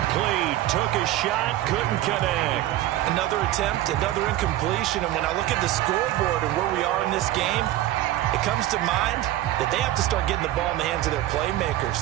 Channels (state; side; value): quieter; left; 14.5 dB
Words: Took a shot, couldn't connect. Another attempt, another incompletion. And when I look at the scoreboard and where we are in this game, it comes to mind that they have to start getting the ball in the hands of their playmakers.